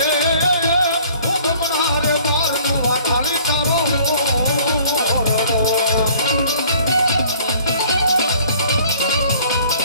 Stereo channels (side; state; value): both; inverted; correlation -0.54